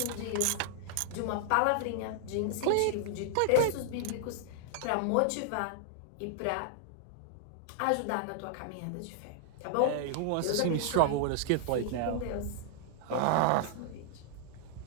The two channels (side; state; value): both; different; correlation -0.01